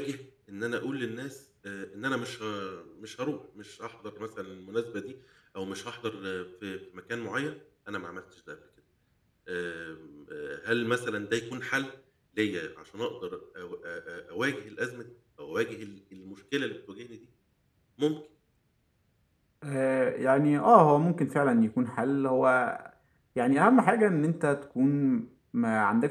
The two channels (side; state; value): both; identical; correlation 1.00